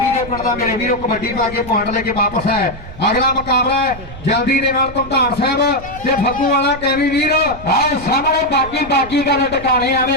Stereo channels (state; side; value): noise; right; rumble, 14 dB below the sound